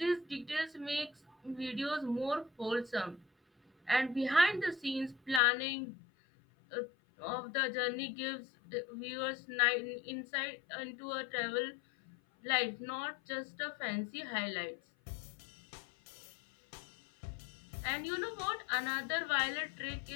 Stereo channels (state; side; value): drops out; right; at 5.4 s